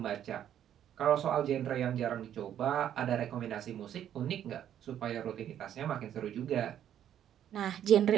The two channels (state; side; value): quieter; left; 10.4 dB